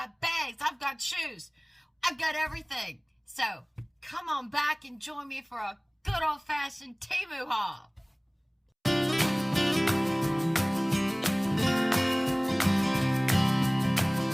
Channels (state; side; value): identical; both; correlation 1.00